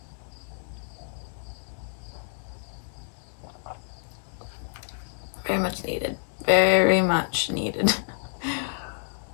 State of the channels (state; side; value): silent; right; digital silence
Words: Very much needed. Very much needed.